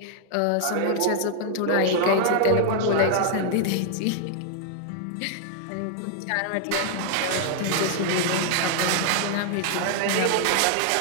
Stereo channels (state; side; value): different; both; correlation 0.00